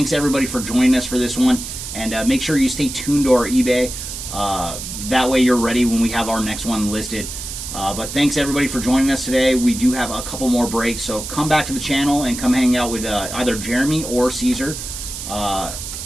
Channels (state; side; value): noise; right; hiss, 8 dB below the sound